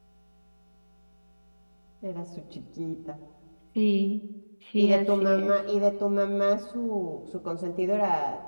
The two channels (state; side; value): inverted; both; correlation -1.00